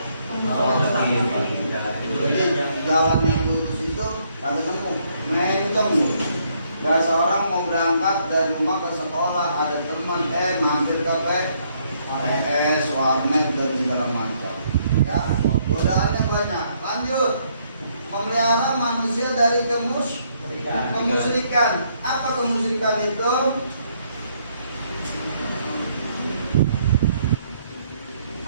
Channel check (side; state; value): both; inverted; correlation -0.70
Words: mustaqim. Jadi jalan yang lurus itu kada nemu, mencong. Bahasa orang mau berangkat dari rumah ke sekolah, ada teman mampir ke PS, warnet dan segala macam. Ya, godaannya banyak. Lanjut. Memelihara manusia dari kemusyrikan. Apa kemusyrikan itu?